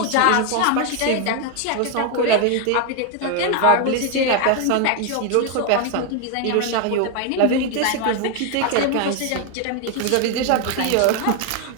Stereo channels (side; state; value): both; different; correlation 0.01